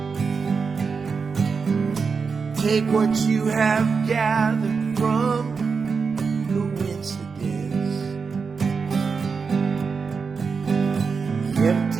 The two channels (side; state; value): left; quieter; 5.2 dB